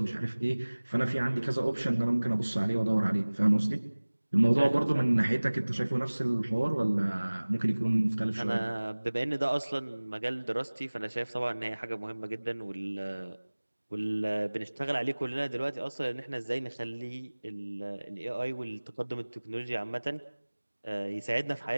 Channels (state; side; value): inverted; both; correlation -1.00